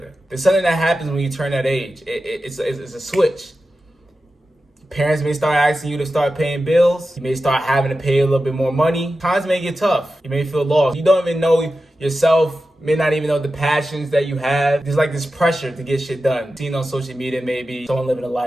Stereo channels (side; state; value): both; normal; correlation 0.92